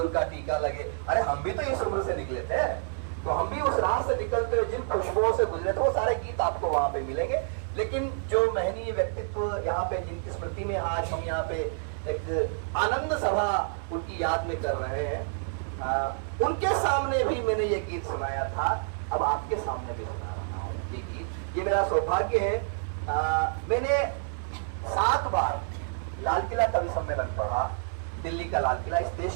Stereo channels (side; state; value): left; silent; digital silence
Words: का टीका लगे। अरे हम भी तो इस उम्र से निकले थे, तो हम भी उस राह से निकलते हुए जिन खुशबुओं से गुजरे थे वो सारे गीत आपको वहां पे मिलेंगे। लेकिन जो महनीय व्यक्तित्व यहाँ पे, जिनकी स्मृति में आज हम यहाँ पे एक आनंद सभा उनकी याद में कर रहे हैं, उनके सामने भी मैंने ये गीत सुनाया था, अब आपके सामने भी सुना रहा हूँ ये गीत। ये मेरा सौभाग्य है। मैंने 7 बार लाल किला कवि सम्मेलन पढ़ा, दिल्ली का लाल किला इस